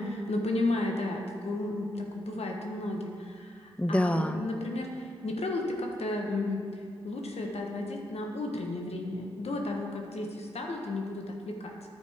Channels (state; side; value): normal; both; correlation 0.80